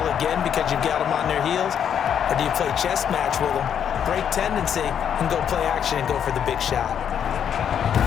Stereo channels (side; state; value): right; quieter; 8.6 dB